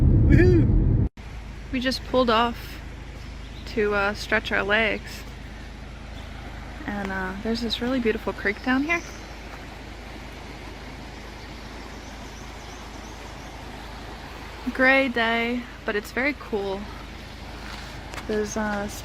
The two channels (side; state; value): both; identical; correlation 1.00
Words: Woohoo! We just pulled off to stretch our legs. And there's this really beautiful creek down here. Gray day, but it's very cool. Those